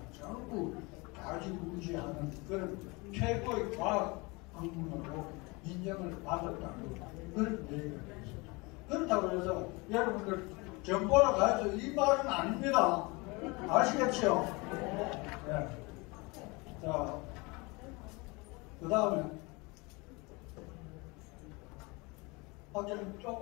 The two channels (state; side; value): quieter; right; 26.2 dB